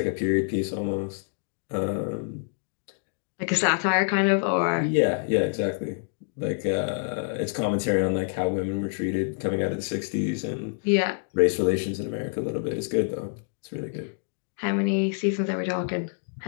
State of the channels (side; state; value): right; silent; digital silence